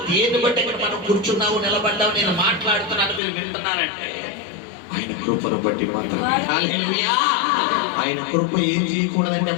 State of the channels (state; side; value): drops out; right; at 3.2 s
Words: దేన్ని బట్టి ఇక్కడ మనం కూర్చున్నాము, నిలబడ్డాము, నేను మాట్లాడుతున్నాను, మీరు వింటున్నారంటే ఆయన కృపను బట్టి మాత్రమే. హల్లెలూయా. ఆయన కృప ఏం చేయకూడదంటే